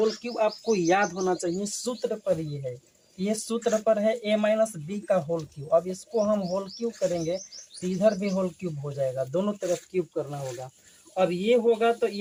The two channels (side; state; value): both; identical; correlation 1.00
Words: क्यूब आपको याद होना चाहिए, सूत्र पर ये है, ये सूत्र पर है a माइनस बी का होल क्यूब। अब इसको हम होल क्यूब करेंगे तो इधर भी होल क्यूब हो जाएगा, दोनों तरफ क्यूब करना होगा। अब ये होगा तो